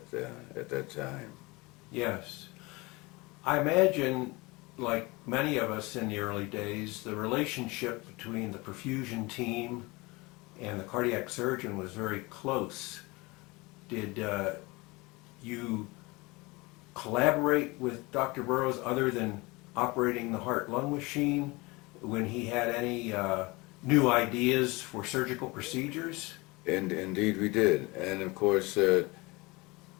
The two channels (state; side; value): quieter; right; 24.2 dB